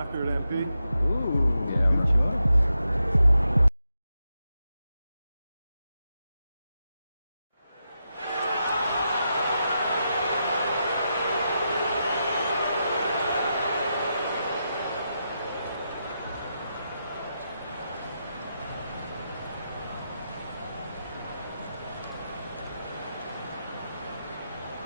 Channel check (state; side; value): inverted; both; correlation -0.86